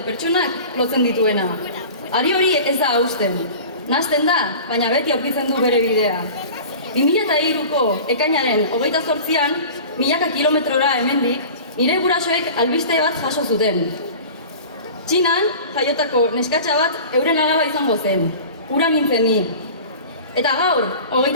pertsonak lotzen dituena. Ari hori ez da hausten. Nahasten da, baina beti aurkitzen du bere bidea. 2003ko ekainaren 28an, milaka kilometrora hemendik, nire gurasoek albiste bat jaso zuten. Txinan, jaiotako neskatxa bat euren alaba izango zen. Ura nintzen ni. Eta gaur,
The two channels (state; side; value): inverted; both; correlation -0.39